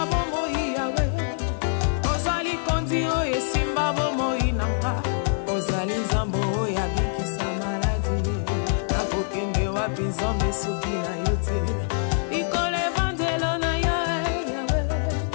bomoi yawe ozali kondi oyo esimba bomoi nanga ozali nzambe oyo abikisa maladi nakokende wapi nzambe soki na yo te likolo evangelo na yo yawe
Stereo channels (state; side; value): silent; right; digital silence